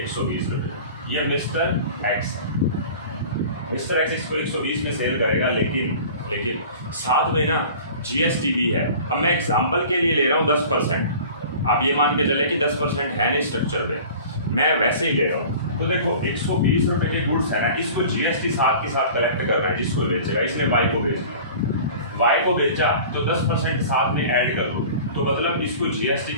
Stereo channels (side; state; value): both; inverted; correlation -0.42